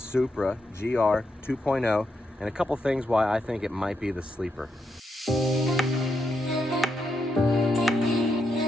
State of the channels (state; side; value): normal; both; correlation 0.82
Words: GR 2.0 and a couple things why I think it might be the sleeper.